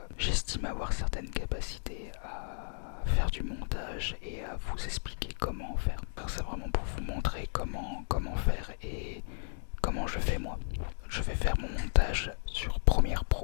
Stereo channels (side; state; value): right; silent; digital silence